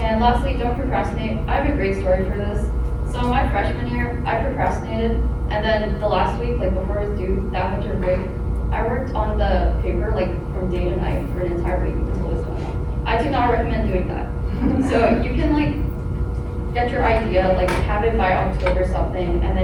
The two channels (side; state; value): both; identical; correlation 1.00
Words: And lastly, don't procrastinate. I have a great story for this. So my freshman year, I procrastinated, and then the last week, like before it was due, that winter break, I worked on the paper like from day to night for an entire week until it was done. I do not recommend doing that. So you can like get your idea, like have it by October something, and